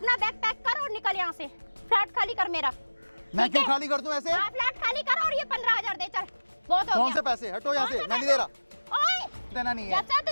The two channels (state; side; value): inverted; both; correlation -1.00